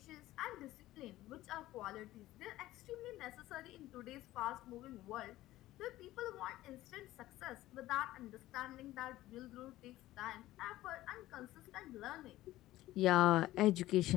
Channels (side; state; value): right; quieter; 15.9 dB